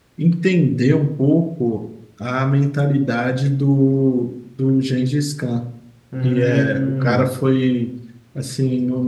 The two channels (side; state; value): both; identical; correlation 1.00